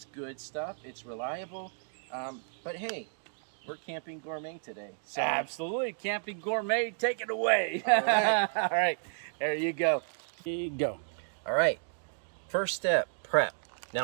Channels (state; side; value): silent; left; digital silence